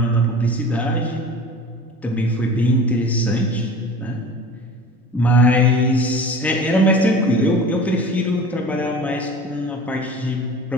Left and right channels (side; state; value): both; normal; correlation 0.38